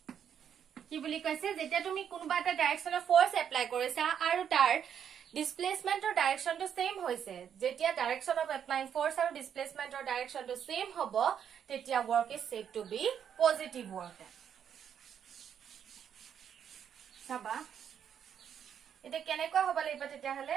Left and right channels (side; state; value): left; quieter; 8.5 dB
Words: কি বুলি কৈছে যেতিয়া তুমি কোনবা এটা ডাইৰেকশনৰ ফোৰ্স এপ্লাই কৰিছা আৰু তাৰ ডিসপ্লেসমেন্টৰ ডাইৰেকশনটো সেম হৈছে যেতিয়া ডাইৰেকশন অফ এপ্লাইং ফোৰ্স আৰু ডিসপ্লেসমেন্টৰ ডাইৰেকশনটো সেম হ'ব তেতিয়া work is said to be positive work সাবা এটা কেনেকৈ হ'ব লাগিব তেতিয়াহলে